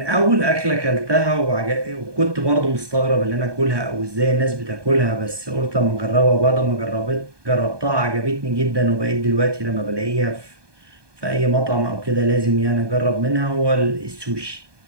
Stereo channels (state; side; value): late; left; 1.2 ms